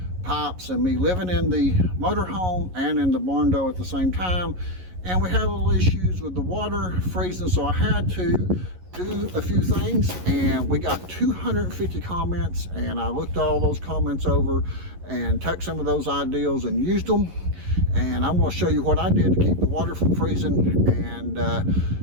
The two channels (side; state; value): left; late; 11 ms